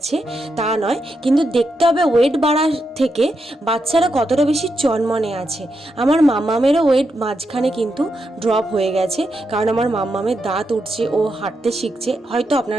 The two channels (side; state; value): both; normal; correlation 0.84